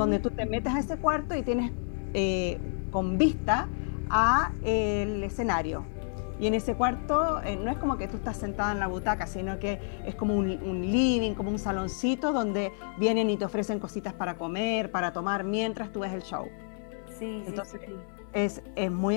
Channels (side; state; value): right; silent; 58 dB below the other